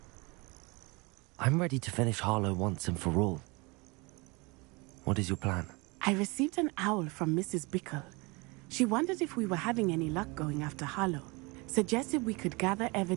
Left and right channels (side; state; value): left; quieter; 27.0 dB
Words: I'm ready to finish Harlow once and for all. What is your plan? I received an owl from Mrs. Bickle. She wondered if we were having any luck going after Harlow. Suggested we could gather